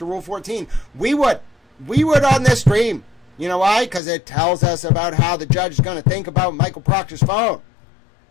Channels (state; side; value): drops out; right; at 4.0 s